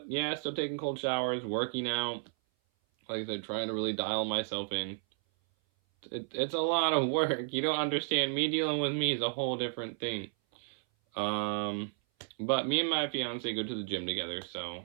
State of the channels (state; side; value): silent; left; 56 dB below the other